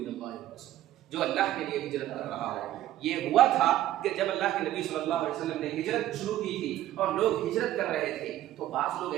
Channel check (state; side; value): quieter; left; 13.5 dB